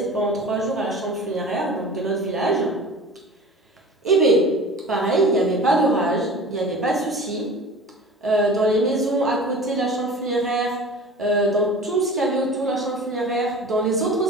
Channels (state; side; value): normal; both; correlation 0.38